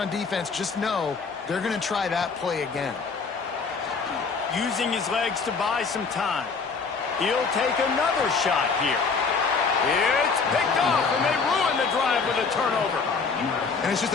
defense, just know they're going to try that play again. Using his legs to buy some time. He'll take another shot here. It's picked off, and they ruin the drive with a turnover. And it's just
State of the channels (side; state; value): right; quieter; 4.9 dB